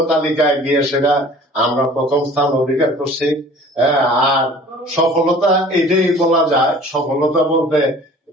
তালিকায় গিয়ে সেটা আমরা প্রথম স্থান অধিকার করছি। আর সফলতা এটাই বলা যায়। সফলতা বলতে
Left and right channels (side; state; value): both; normal; correlation 0.47